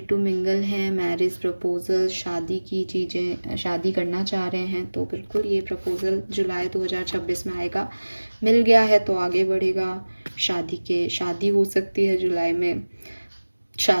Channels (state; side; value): inverted; both; correlation -1.00